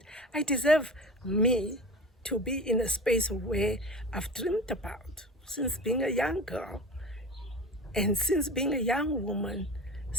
I deserve me to be in a space where I've dreamed about since being a young girl, and since being a young woman,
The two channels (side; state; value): both; normal; correlation 0.34